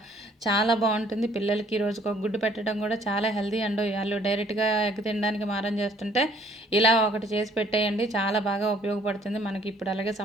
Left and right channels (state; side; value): normal; both; correlation 0.60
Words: చాలా బాగుంటుంది. పిల్లలకి రోజుకు ఒక గుడ్డు పెట్టడం కూడా చాలా హెల్దీ అండి. వాళ్ళు డైరెక్ట్గా ఎగ్ తినడానికి మారం చేస్తుంటే ఇలా ఒకటి చేసి పెట్టేయండి, చాలా బాగా ఉపయోగపడుతుంది మనకి. ఇప్పుడు అలాగే